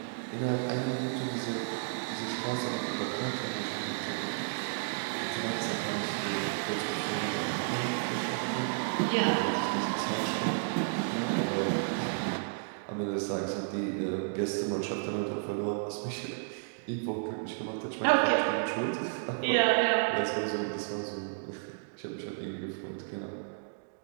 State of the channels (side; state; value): left; silent; digital silence